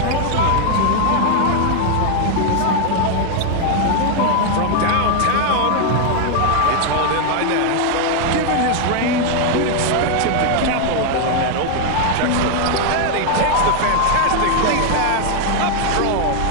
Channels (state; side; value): different; both; correlation 0.00